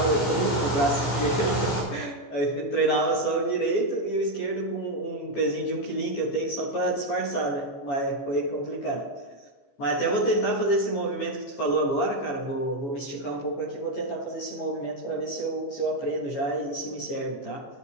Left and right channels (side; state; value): right; late; 14 ms